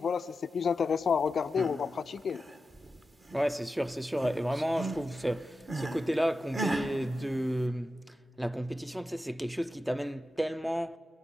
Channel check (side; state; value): both; normal; correlation 0.91